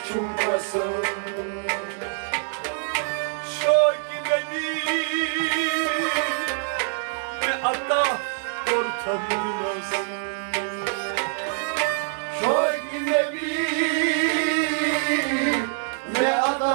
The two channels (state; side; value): silent; left; digital silence